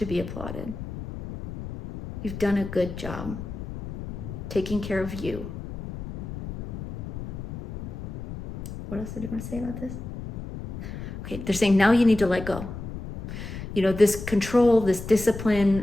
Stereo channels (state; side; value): noise; left; rumble, 9 dB below the sound